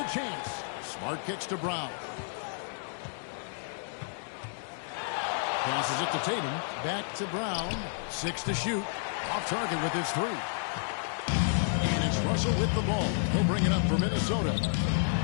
chance. Smart kicks to Brown. Passes it to Tatum. Back to Brown. 6 to shoot. Off target with his 3. And it's Russell with the ball. He'll bring it up for Minnesota.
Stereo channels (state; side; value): silent; right; digital silence